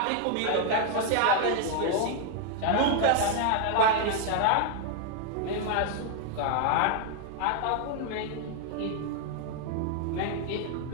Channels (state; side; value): different; both; correlation 0.00